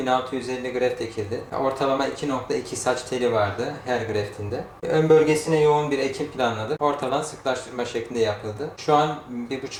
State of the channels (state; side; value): identical; both; correlation 1.00